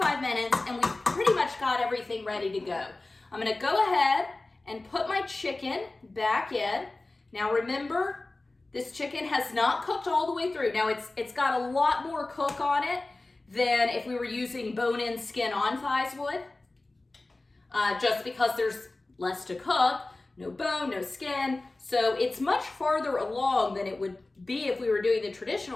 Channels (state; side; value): quieter; right; 3.0 dB